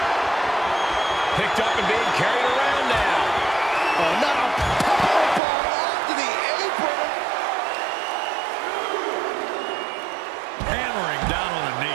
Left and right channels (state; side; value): drops out; left; at 5.4 s